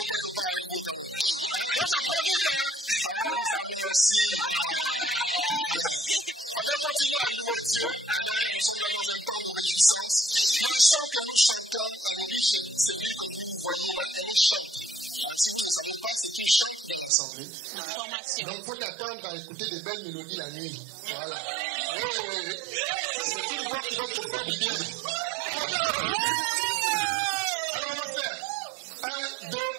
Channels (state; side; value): drops out; left; at 17.1 s